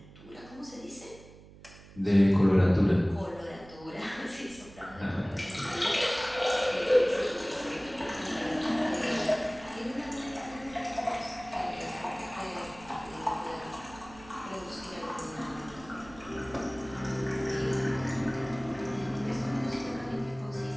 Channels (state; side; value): noise; right; hum, 20 dB below the sound